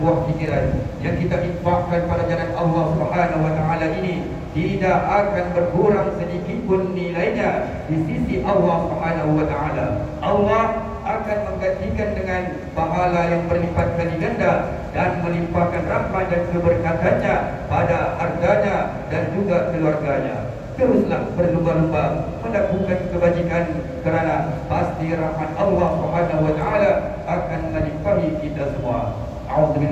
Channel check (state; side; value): identical; both; correlation 1.00